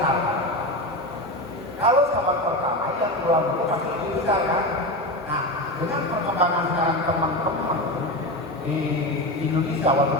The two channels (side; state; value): both; normal; correlation 0.21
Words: Kalau cabang pertama yang pulang dulu pasti lebih besar kan? Nah, dengan perkembangan sekarang teman-teman di Indonesia